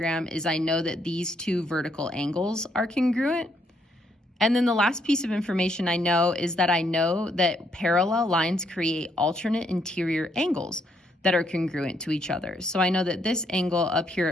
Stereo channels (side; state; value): both; normal; correlation 0.73